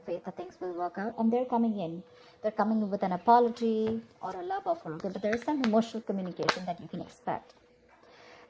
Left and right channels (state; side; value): identical; both; correlation 1.00